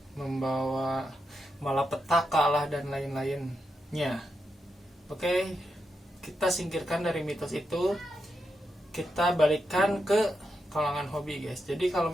membawa malapetaka lah, dan lain-lainnya. Oke, kita singkirkan dari mitos itu, kita balikkan ke kalangan hobi guys. Jadi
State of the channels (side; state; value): both; normal; correlation 0.85